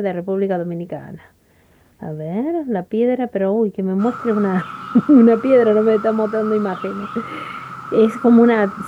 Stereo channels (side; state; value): both; identical; correlation 1.00